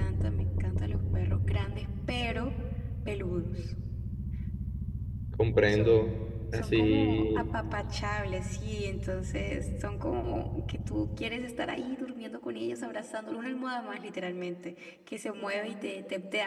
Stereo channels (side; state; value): both; identical; correlation 1.00